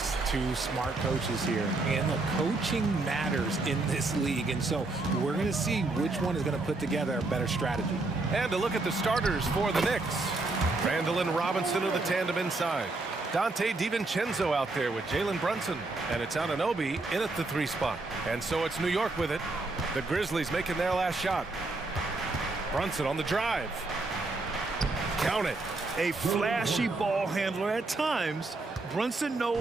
two smart coaches here. And the coaching matters in this league. And so we're going to see which one is going to put together a better strategy. And to look at the starters for the Knicks. Randall and Robinson are the tandem inside. Dante DiVincenzo out there with Jalen Brunson. And it's Anunoby in at the 3 spot. And so it's New York with it. The Grizzlies making their last shot. Brunson on the drive. Count it. A flashy ball handler at times. Brunson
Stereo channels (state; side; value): quieter; left; 3.2 dB